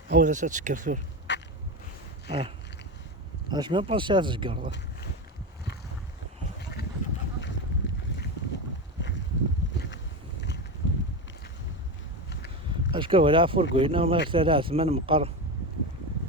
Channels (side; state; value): both; normal; correlation 0.19